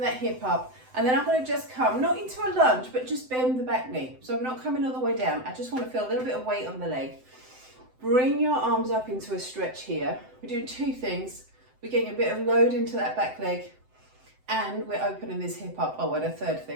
hip up, and then I'm going to just come, not into a lunge, but just bend the back knee. So I'm not coming all the way down. I just want to feel a little bit of weight on the leg. Bring your arms up into a stretch here. We're doing two things. We're getting a bit of load into that back leg, and we're opening this hip up. Oh, and a third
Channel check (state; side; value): late; left; 7.8 ms